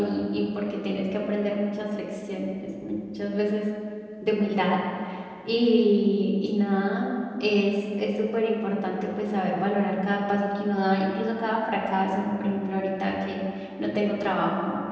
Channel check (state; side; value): identical; both; correlation 1.00